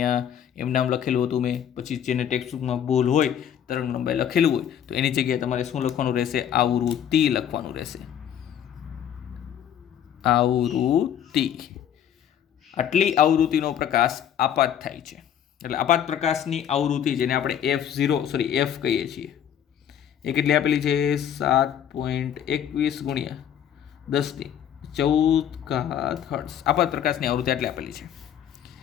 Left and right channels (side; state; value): right; quieter; 9.5 dB